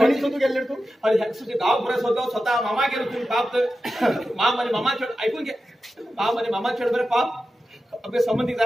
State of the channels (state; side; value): normal; both; correlation 0.92